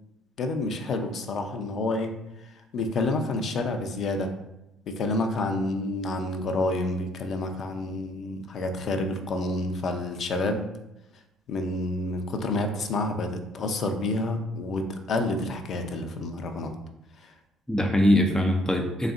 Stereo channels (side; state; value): both; normal; correlation 0.63